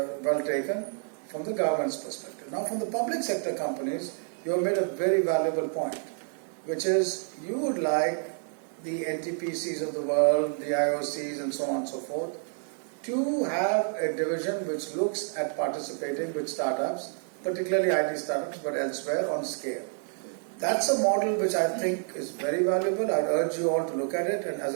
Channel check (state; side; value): silent; left; 59 dB below the other